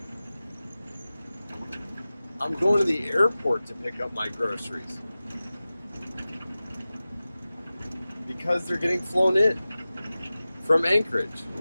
I'm going to the airport to pick up my groceries. Because they're getting flown in from Anchorage.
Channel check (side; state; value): both; inverted; correlation -0.96